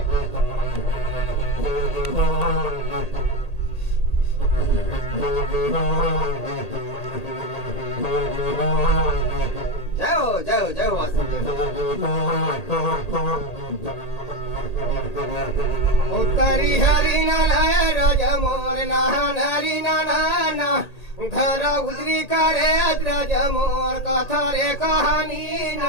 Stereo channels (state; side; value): late; right; 1.8 ms